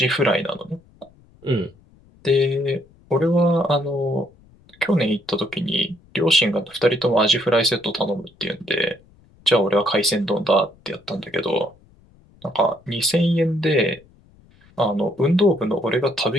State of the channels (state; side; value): noise; left; rumble, 29 dB below the sound